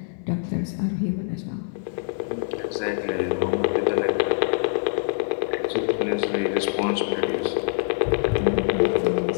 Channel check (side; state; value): right; silent; digital silence